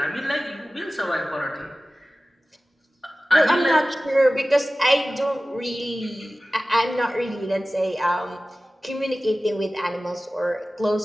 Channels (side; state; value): both; normal; correlation 0.96